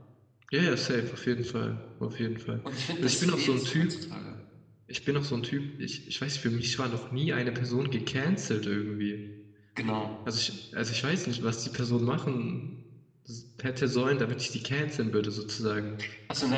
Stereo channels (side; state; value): both; identical; correlation 1.00